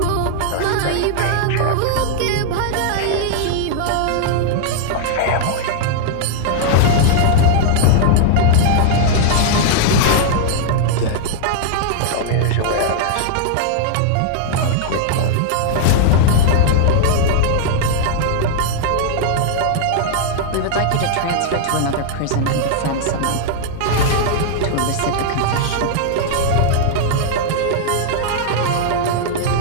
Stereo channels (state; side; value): different; both; correlation -0.01